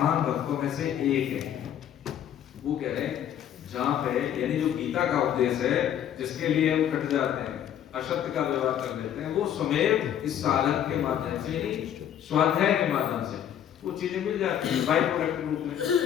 भक्तों में से एक है। वो कह रहे हैं जहां पे, यानी जो गीता का उपदेश है, जिसके लिए हम कट जाते हैं, असत्य का व्यवहार कर लेते हैं, वो स्वयं इस साधन के माध्यम से ही, स्वाध्याय के माध्यम से वो चीजें मिल जाती हैं बाई प्रोडक्ट रूप में,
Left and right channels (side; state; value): right; quieter; 10.1 dB